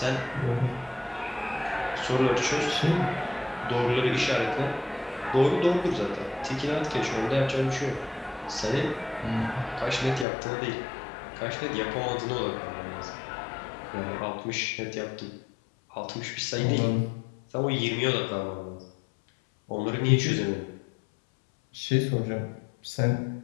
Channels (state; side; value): drops out; right; at 10.2 s